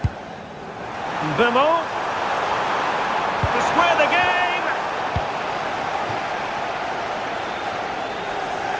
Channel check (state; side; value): identical; both; correlation 1.00